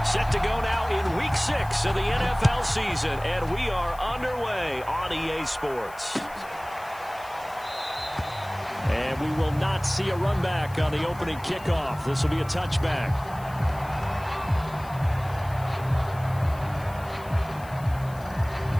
Set to go now in Week 6 of the NFL season, and we are underway on EA Sports. And we will not see a run back on the opening kickoff. This will be a touchback.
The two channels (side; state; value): left; noise; hiss, 22 dB below the sound